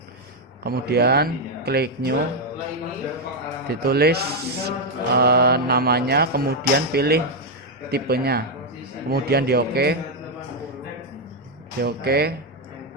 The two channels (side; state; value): both; normal; correlation 0.01